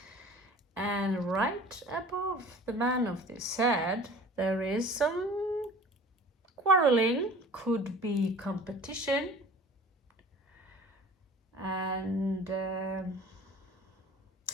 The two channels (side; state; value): both; normal; correlation 0.44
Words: And right above the man of this head, there is some quarreling, could be competition. And it